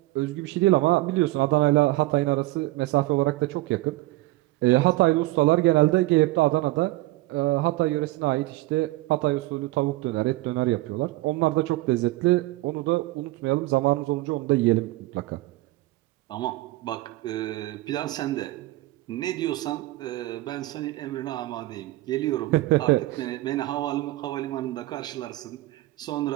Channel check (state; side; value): quieter; left; 18.9 dB